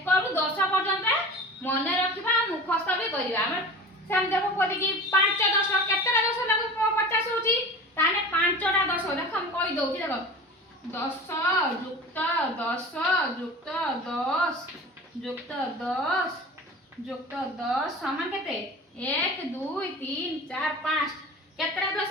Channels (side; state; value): both; normal; correlation 0.35